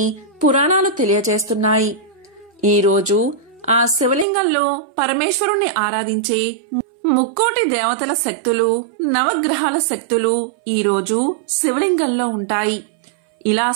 పురాణాలు తెలియచేస్తున్నాయి. ఈ రోజు ఆ శివలింగంలో పరమేశ్వరుణ్ణి ఆరాధించే ముక్కోటి దేవతల శక్తులు, నవగ్రహాల శక్తులు ఈ రోజు శివలింగంలో ఉంటాయి. ఇలా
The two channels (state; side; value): drops out; left; at 4.2 s